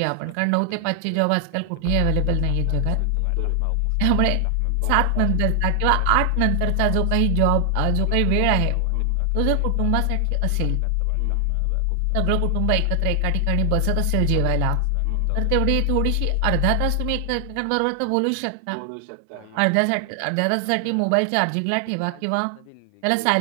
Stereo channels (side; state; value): both; different; correlation 0.00